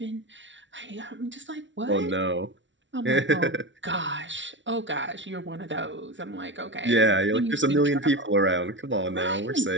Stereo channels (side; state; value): left; late; 0.55 ms